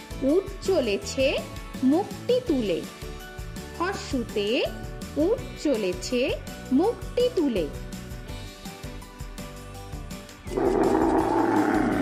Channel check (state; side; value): identical; both; correlation 1.00